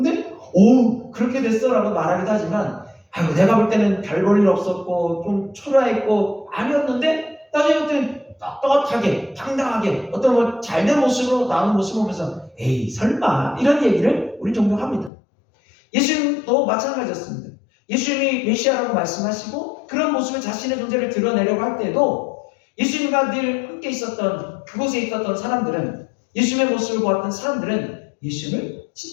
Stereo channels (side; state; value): right; drops out; at 15.1 s